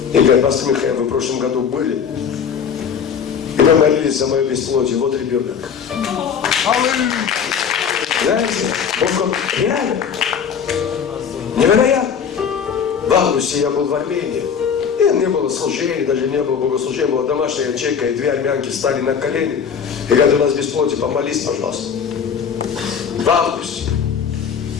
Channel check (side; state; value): right; quieter; 7.1 dB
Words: И говорит: пастор Михаил, вы в прошлом году были. И вы молились за мое бесплодие. Вот ребенок. Знаете, он реально невероятно. В августе я был в Армении. И не было служения, даже не было богослужения. Была домашняя ячейка, и две армянки стали на колени. И говорят: у нас бесплодие, помолись, пожалуйста. В августе